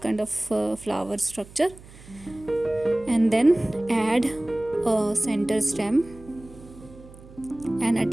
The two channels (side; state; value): right; noise; hum, 20 dB below the sound